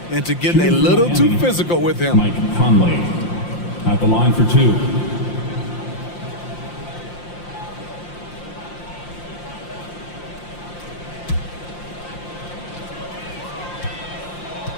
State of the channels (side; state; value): right; late; 5.7 ms